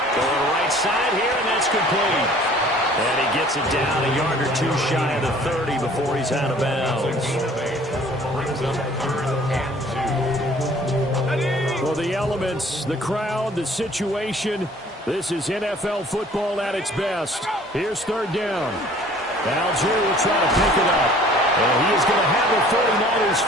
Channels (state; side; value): normal; both; correlation 0.52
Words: Going right side here, and that's complete. And he gets it down a yard or 2 shy of the 30 before he's out of bounds. Brings up 3rd and 2. Well, the elements, the crowd, the situation, this is NFL football at its best. Here's 3rd down. Algier will try to pick it up. And he is going to have the 49ers